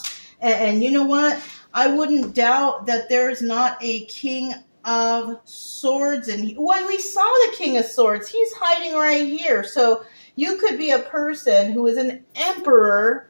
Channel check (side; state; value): both; inverted; correlation -1.00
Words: And you know what? I wouldn't doubt that there's not a King of Swords. And when we saw the King of Swords, he's hiding right here. So you could be a person who is an emperor,